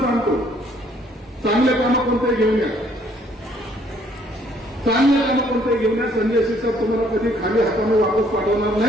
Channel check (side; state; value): both; normal; correlation 0.64